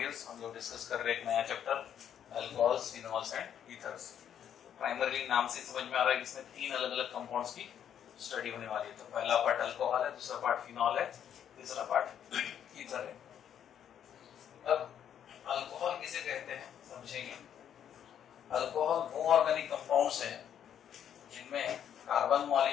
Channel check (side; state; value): right; quieter; 9.3 dB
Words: हम लोग discuss कर रहे हैं एक नया chapter alcohols, phenols and ethers. Primarily नाम से समझ में आ रहा है कि इसमें तीन अलग अलग कंपाउंड्स की स्टडी होने वाली है। तो पहला पार्ट अल्कोहल है, दूसरा पार्ट फिनॉल है, तीसरा पार्ट ईथर है। अब अल्कोहल किसे कहते हैं समझेंगे। अल्कोहल वो ऑर्गेनिक कंपाउंड्स हैं जिनमें कार्बन